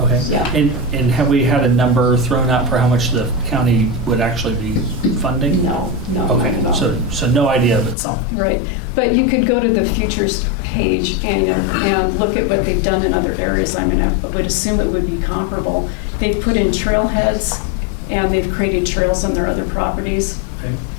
Yeah. And have we had a number thrown out for how much the county would actually be funding? No, Okay, not at all. so no idea, but something. Right, but you could go to the Futures page and look at what they've done in other areas. I mean, I would assume it would be comparable. They've put in trailheads, and they've created trails on their other properties. Okay.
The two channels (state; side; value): drops out; right; at 8.0 s